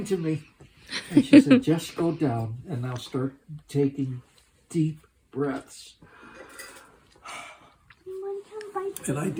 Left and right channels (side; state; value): both; identical; correlation 1.00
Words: to me? And she said, just go down and now start taking deep breaths. And I